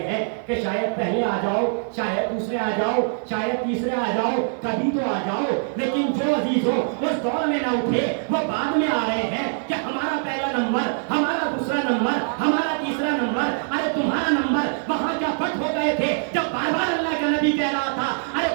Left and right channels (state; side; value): silent; left; 63 dB below the other